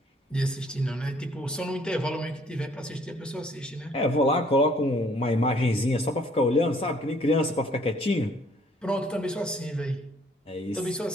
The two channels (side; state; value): both; normal; correlation 0.61